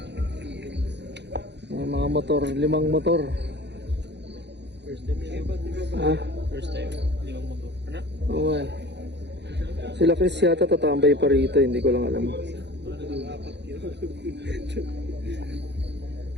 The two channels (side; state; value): left; late; 0.50 ms